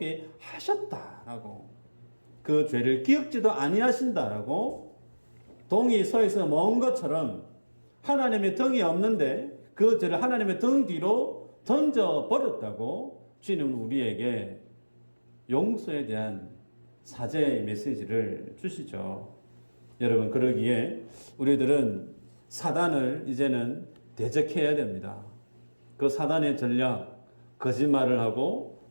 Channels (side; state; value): both; inverted; correlation -1.00